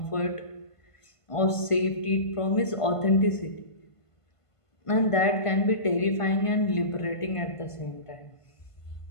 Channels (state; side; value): late; right; 1.5 ms